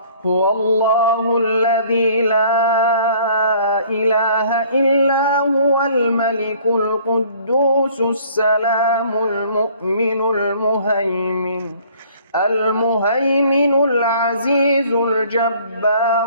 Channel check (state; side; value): inverted; both; correlation -0.56